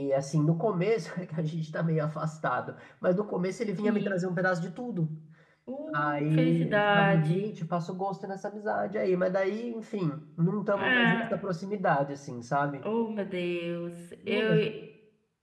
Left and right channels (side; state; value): both; identical; correlation 1.00